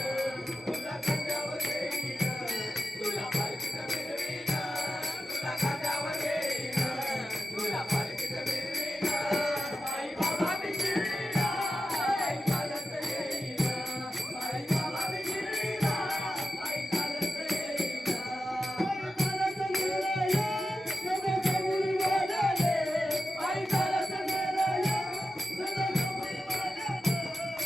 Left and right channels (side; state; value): both; normal; correlation 0.92